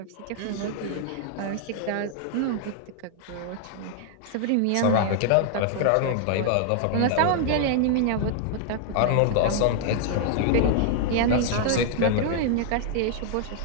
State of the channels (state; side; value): different; both; correlation 0.00